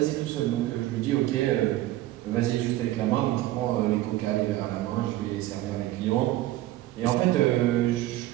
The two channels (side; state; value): left; quieter; 15.5 dB